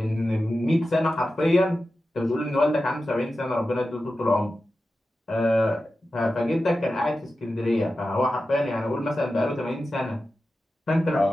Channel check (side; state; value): both; normal; correlation 0.92